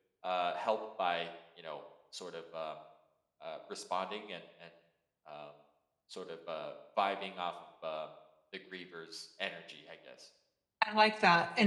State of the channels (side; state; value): both; identical; correlation 1.00